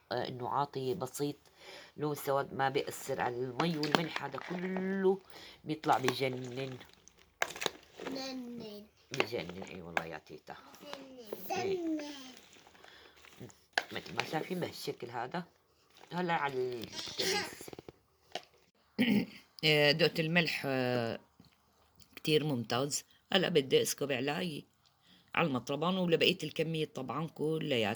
انه عاطي بسيط لون سواد ما بيأثر على المي والملح، هذا كله بيطلع بجنن بجنن. اي والله يا تيتا مثل ما شايفين بهالشكل هذا. هلا على الكبيس دقت الملح كتير ممتاز. هلا بدي اسكب على المطربان ولبقية الكمية طبعا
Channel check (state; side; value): identical; both; correlation 1.00